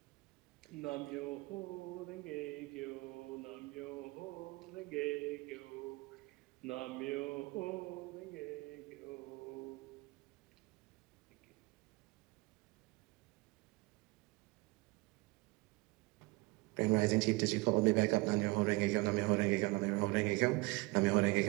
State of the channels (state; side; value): quieter; left; 24.3 dB